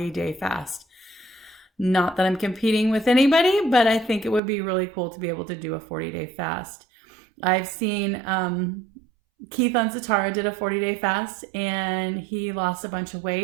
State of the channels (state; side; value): drops out; left; at 4.4 s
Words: fast. Not that I'm competing with anybody, but I think it would be really cool to be able to do a 40-day fast. I've seen Keith on Satara did a 40-day fast and he lost a bunch of